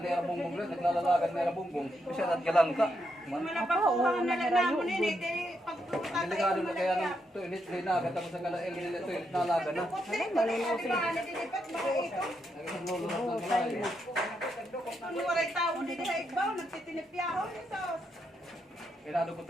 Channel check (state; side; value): normal; both; correlation 0.81